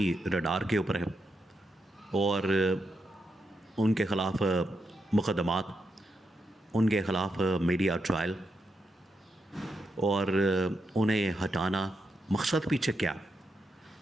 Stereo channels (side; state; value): both; normal; correlation 0.84